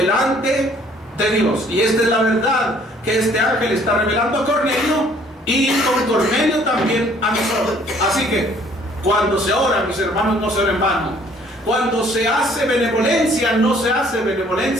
de Dios. Y esta es la verdad que este ángel está revelando a Cornelio, y con Cornelio también a nosotros. Así que cuando se ora, mis hermanos, no se ora en vano. Cuando se hace benevolencia, no se hace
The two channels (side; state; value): both; normal; correlation 0.59